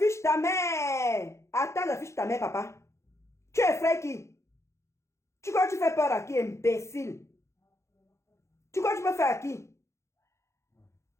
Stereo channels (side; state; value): right; late; 0.14 ms